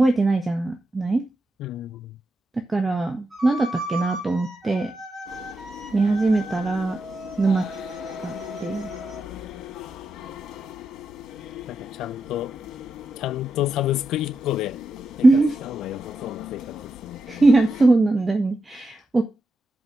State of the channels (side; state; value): both; normal; correlation 0.87